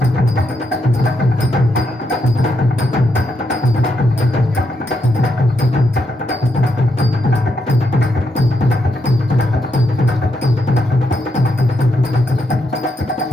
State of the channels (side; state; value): both; normal; correlation 0.80